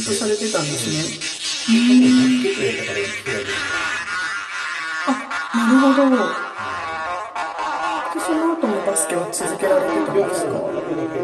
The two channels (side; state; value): both; identical; correlation 1.00